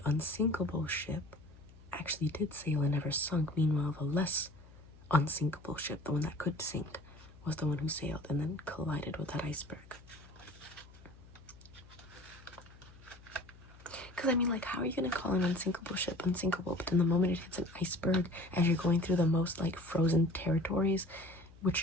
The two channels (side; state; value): left; noise; hum, 21 dB below the sound